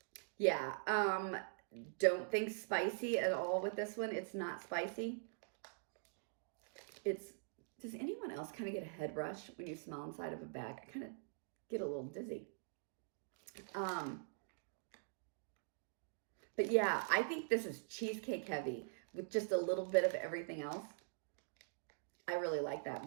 Yeah, don't think spicy at all with this one. It's not spicy. Does anyone else kind of get a head rush when you smell inside of a bag? I kind of get a little dizzy. But yeah, I think this is cheesecake heavy with just a little bit of everything else. I really like that,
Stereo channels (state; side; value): silent; left; digital silence